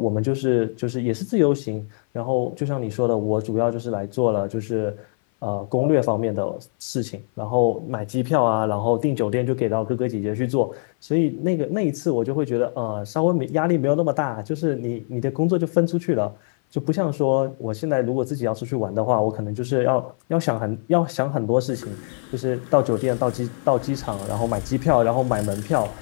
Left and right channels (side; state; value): right; silent; 58 dB below the other